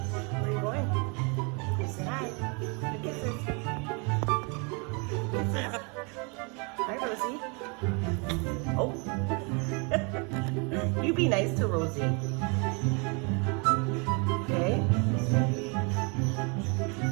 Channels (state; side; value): quieter; left; 33.2 dB